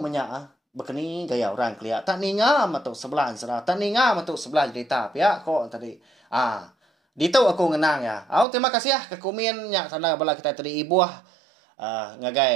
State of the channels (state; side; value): drops out; left; at 8.5 s